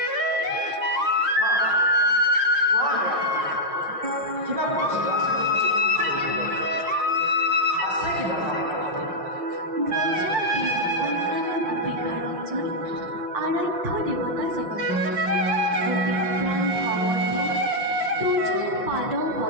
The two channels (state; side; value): late; left; 5.7 ms